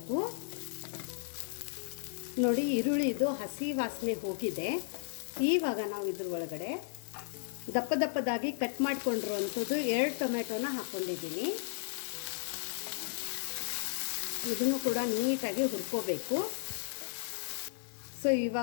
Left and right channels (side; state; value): right; silent; digital silence